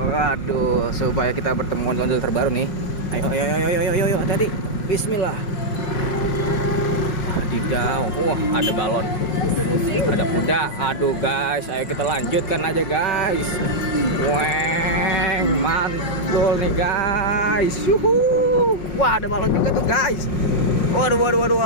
supaya kita bertemu ondel terbaru nih. Ayo, hati-hati. Bismillah. Wadidaw, ada balon, ada kuda. Aduh guys, ayo kita lanjutkan aja guys. Weng, mantul nih guys. Wah, ada balon juga tuh guys. Waduh,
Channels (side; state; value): right; late; 5.5 ms